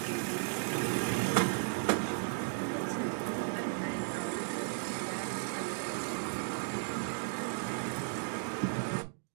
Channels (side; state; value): left; silent; digital silence